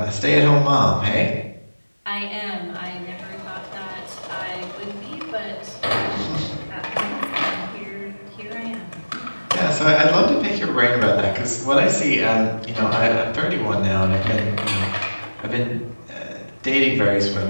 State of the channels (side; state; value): both; inverted; correlation -1.00